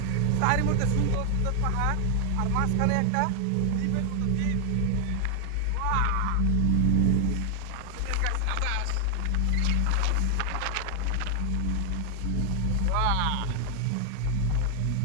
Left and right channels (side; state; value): both; different; correlation 0.00